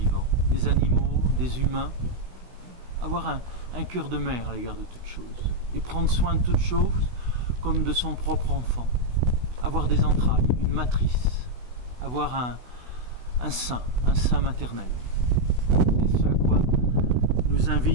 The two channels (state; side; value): late; left; 16 ms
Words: des animaux, des humains. Avoir un cœur de mère à l'égard de toutes choses et prendre soin de toutes choses comme de son propre enfant. Avoir des entrailles, une matrice, avoir un sein maternel. C'est ce à quoi nous